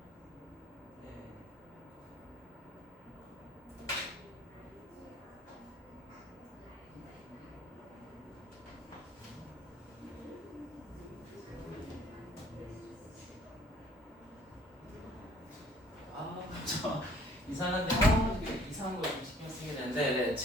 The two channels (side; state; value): both; normal; correlation 0.56